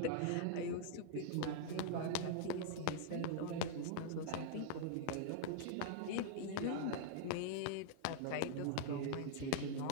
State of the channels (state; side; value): different; both; correlation -0.01